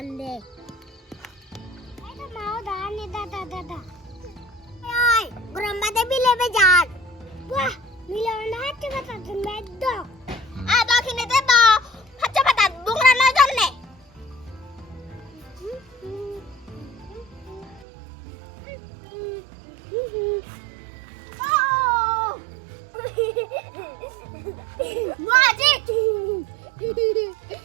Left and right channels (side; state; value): left; drops out; at 17.9 s